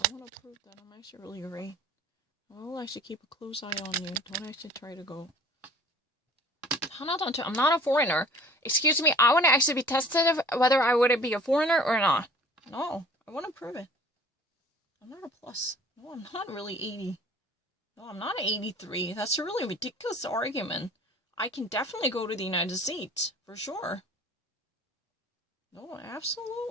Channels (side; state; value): both; normal; correlation 0.48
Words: want to prove that I'm actually really great. I'll actually keep a close eye on you. Don't actually try to go. I'm not a foreigner. Excuse me, I want to actually be tested whether I would be a foreigner or not. No, I want to prove it. I'm not a plus. No, I'm not really 80. No, I'm not 83. That's a really ridiculous argument. I can definitely go to the United States, for sure. No,